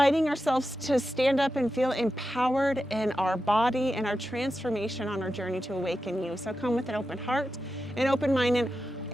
ourselves to stand up and feel empowered in our body and our transformation on our journey to awaken you. So come with an open heart, an open mind, and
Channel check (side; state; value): both; normal; correlation 0.90